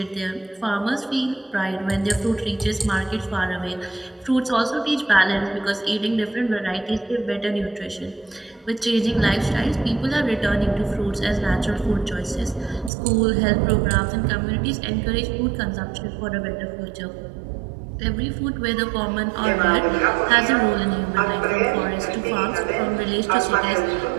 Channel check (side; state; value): left; drops out; at 12.9 s